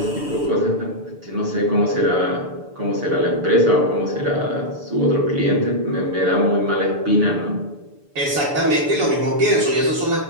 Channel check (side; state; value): left; late; 6.8 ms